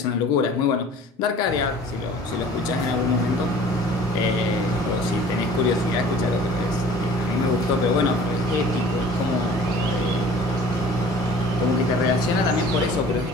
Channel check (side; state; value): both; normal; correlation 0.47